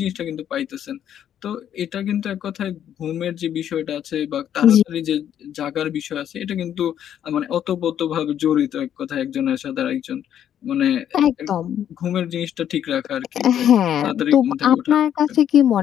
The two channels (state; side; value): quieter; right; 10.0 dB